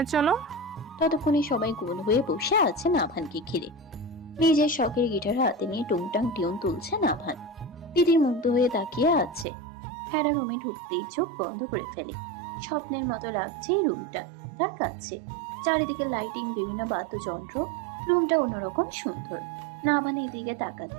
চলো। ততক্ষণে সবাই গোল হয়ে বসে আছে নাভানকে ঘিরে। নিজের শখের গিটার হাতে নিয়ে টুংটাং টিউন তুলছে নাভান। দিদির মুগ্ধ হয়ে তাকিয়ে আছে। হেরা রুমে ঢুকতেই চোখ বন্ধ করে ফেলে। স্বপ্নের মতো লাগছে এই রুমটা তার কাছে। চারিদিকে লাইটিং, বিভিন্ন বাদ্যযন্ত্র, রুমটা অন্যরকম সুন্দর। নাভানের দিকে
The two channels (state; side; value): drops out; left; at 9.5 s